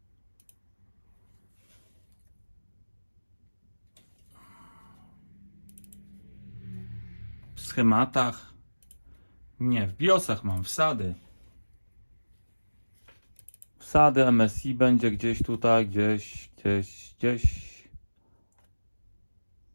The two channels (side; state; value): both; inverted; correlation -1.00